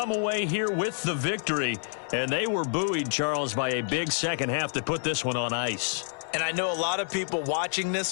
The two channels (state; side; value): silent; right; 59 dB below the other